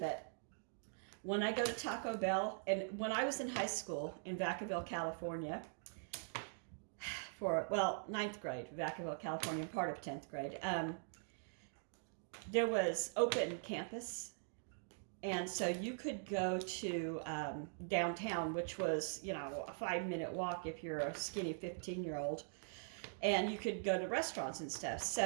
when I go to Taco Bell, and when I was in high school in Vacaville, California, for, well, 9th grade, Vacaville, California, part of 10th grade, there was open campus, and so you could go to downtown, which was, you know, a 5-minute walk if you're a skinny 15-year-old, and you could go to restaurants and stuff.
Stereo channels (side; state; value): left; silent; digital silence